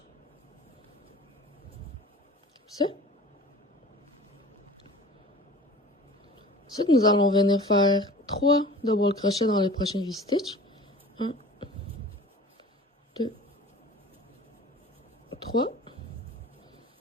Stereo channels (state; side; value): normal; both; correlation 0.42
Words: Comme ça. Ensuite, nous allons venir faire 3 double crochets dans le prochain V-stitch. 1, 2, 3.